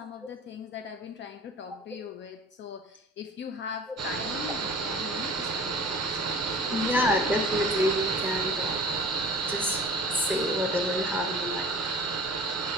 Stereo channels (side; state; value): both; normal; correlation 0.43